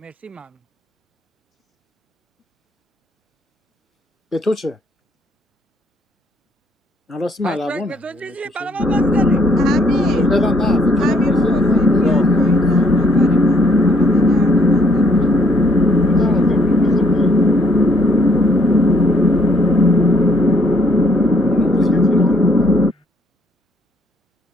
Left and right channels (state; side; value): normal; both; correlation 0.67